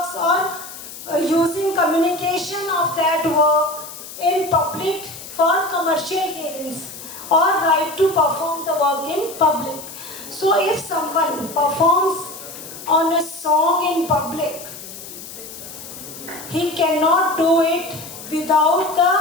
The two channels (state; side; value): noise; left; hiss, 13 dB below the sound